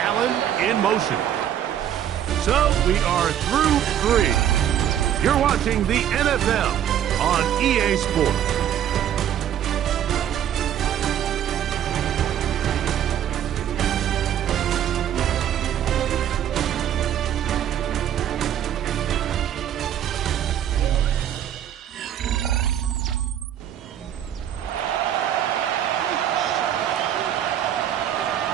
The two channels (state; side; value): quieter; left; 10.4 dB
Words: Allen in motion. So we are through 3. You're watching the NFL on EA Sports.